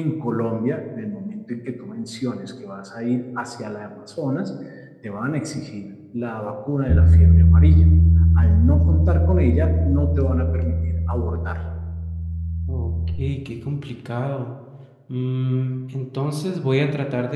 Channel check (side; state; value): both; identical; correlation 1.00